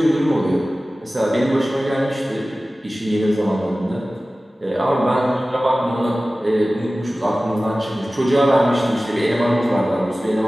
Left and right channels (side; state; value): both; normal; correlation 0.97